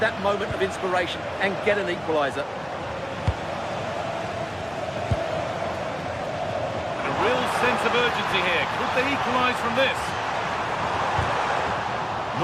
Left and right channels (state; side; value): identical; both; correlation 1.00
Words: that moment of inspiration and get an equaliser? A real sense of urgency here. Could they equalise from this?